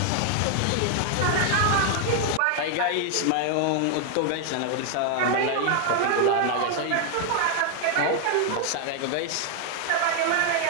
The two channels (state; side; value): different; both; correlation 0.00